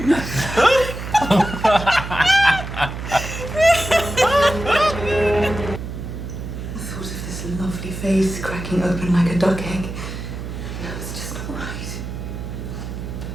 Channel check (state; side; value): noise; right; hum, 7 dB below the sound